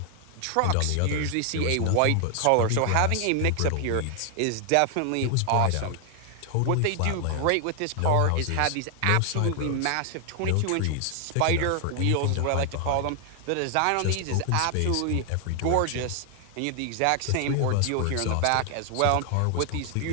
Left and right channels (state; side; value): different; both; correlation 0.00